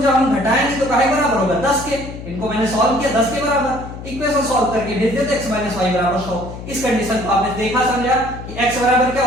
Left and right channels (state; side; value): noise; left; hum, 11 dB below the sound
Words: हम घटाएंगे तो काहे बराबर होगा, 10 के। इनको मैंने सॉल्व किया 10 के बराबर, इक्वेशन सॉल्व करके भेज देते x - y बराबर 100। इस कंडीशन को आपने देखा समझा कि x बराबर क्या